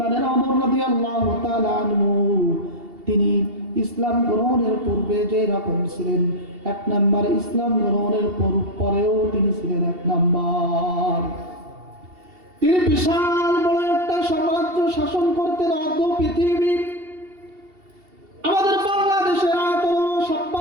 ওমর রাদিয়াল্লাহু তাআলা আনহু, তিনি ইসলাম গ্রহণের পূর্বে যে রকম ছিলেন, এক নাম্বার ইসলাম গ্রহণের পরেও তিনি ছিলেন এক নাম্বার। তিনি বিশাল বড় একটা সাম্রাজ্য শাসন করতেন, অর্ধ পৃথিবী। আমাদের বাংলাদেশের আয়তন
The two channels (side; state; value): left; late; 2.7 ms